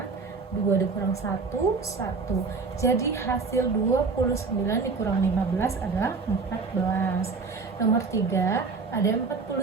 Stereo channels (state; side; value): quieter; left; 4.5 dB